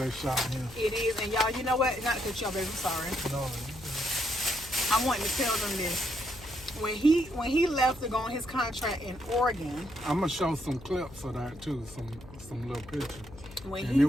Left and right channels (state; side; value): noise; left; hum, 18 dB below the sound